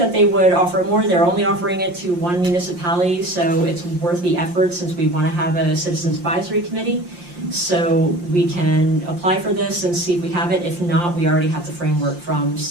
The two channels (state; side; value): late; left; 5.7 ms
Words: they would offer more. They're only offering it to one municipality, so it's worth the effort since we want to have a citizens advisory committee. So we can apply for this and see if we have it. If not, we already have the framework from